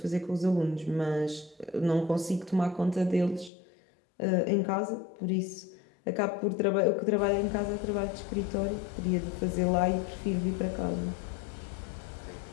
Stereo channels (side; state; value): right; drops out; at 3.5 s